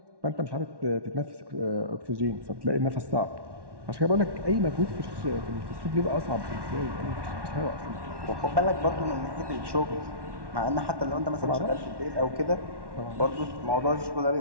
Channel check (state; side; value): late; left; 1.1 ms